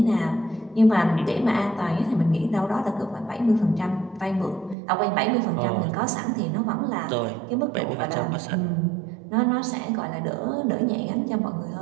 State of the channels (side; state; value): left; drops out; at 4.8 s